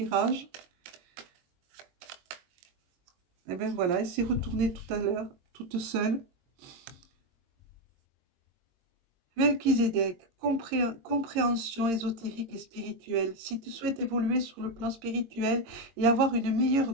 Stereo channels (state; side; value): late; left; 22 ms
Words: Et bien voilà, elle s'est retournée tout à l'heure, toute seule. Melchizedek, compréhension ésotérique et spirituelle. Si tu souhaites évoluer sur le plan spirituel et avoir une